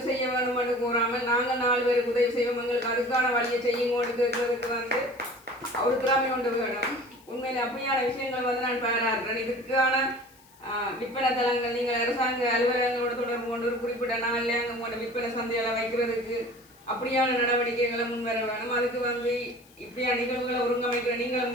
செய்ய வேணும்னு கூறாமல் நாங்கள் 4 பேருக்கு உதவி செய்வோம் எங்களுக்கு அதுக்கான வழியை செய்யுங்கோன்னு கேட்கறதுக்கு வந்து ஒரு திறமை கொண்டு வேணும் உண்மையில் அப்படியான விஷயங்கள் வந்து நான் பாராட்டுறேன் இதுக்கான விற்பனை தளங்கள் நீங்கள் அரசாங்க அலுவலகங்களோட தொடர்பு கொண்டு ஒரு குறிப்பிட்ட நாளில் அங்கே உங்களோட விற்பனை சந்தைகளை வைக்கிறதுக்கு அப்படியான நடவடிக்கைகளை முன்வர வேணும் அதுக்கு வந்து இப்படியான நிகழ்வுகளை ஒருங்கமைக்கிற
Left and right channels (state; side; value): noise; left; hiss, 28 dB below the sound